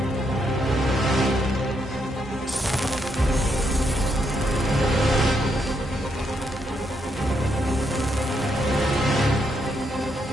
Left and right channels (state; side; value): normal; both; correlation 0.77